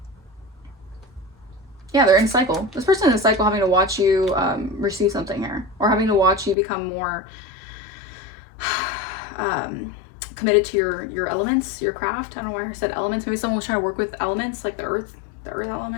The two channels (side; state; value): right; drops out; at 6.6 s